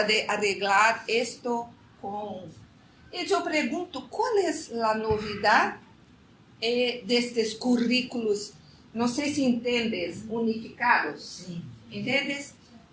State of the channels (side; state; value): both; identical; correlation 1.00